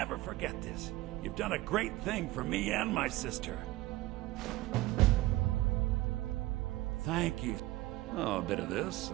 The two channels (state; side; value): quieter; left; 18.1 dB